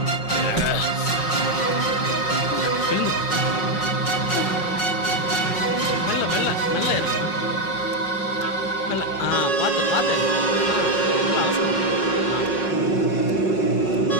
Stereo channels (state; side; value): late; right; 5.5 ms